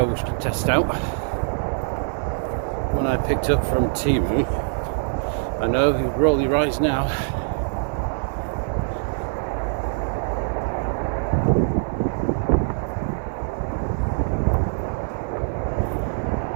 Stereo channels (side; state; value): left; silent; digital silence